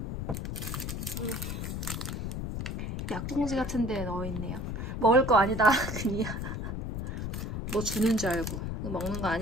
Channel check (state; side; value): noise; left; rumble, 4 dB below the sound